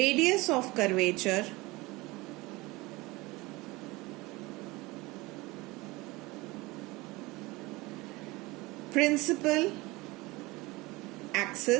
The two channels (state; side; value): quieter; left; 22.2 dB